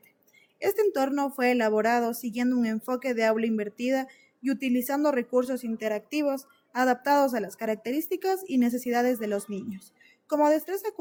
Este entorno fue elaborado siguiendo un enfoque de aula invertida y utilizando recursos interactivos adaptados a las características y necesidades de los niños. Como destreza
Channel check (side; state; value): both; identical; correlation 1.00